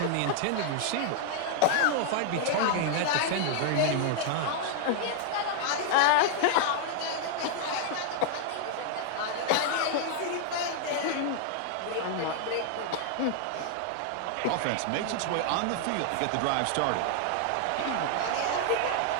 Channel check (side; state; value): both; different; correlation 0.00